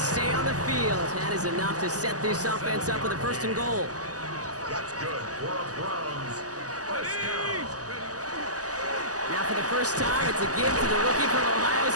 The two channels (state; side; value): late; left; 0.67 ms